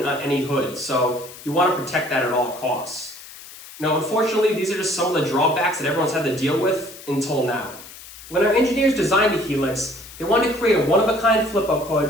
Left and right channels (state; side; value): noise; left; hiss, 17 dB below the sound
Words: on any hood, so you want to protect that at all costs. Now, unfortunately, these are just some of the drawbacks that everyone's had to deal with until now. When our engineers designed the Helix, they wanted to create a one-of-a-kind flip-up